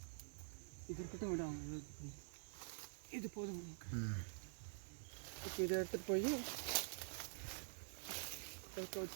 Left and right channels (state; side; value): silent; left; digital silence